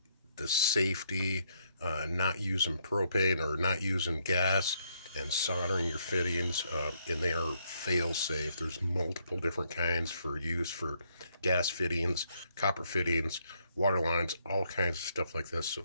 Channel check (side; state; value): both; inverted; correlation -0.73